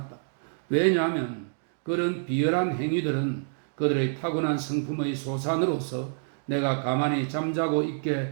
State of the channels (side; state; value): left; silent; digital silence